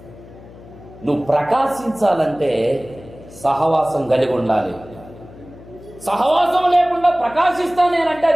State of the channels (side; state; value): left; noise; hum, 20 dB below the sound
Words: నువ్వు ప్రకాశించాలంటే సహవాసం కలిగి ఉండాలి. సహవాసం లేకుండా ప్రకాశిస్తా నేనంటే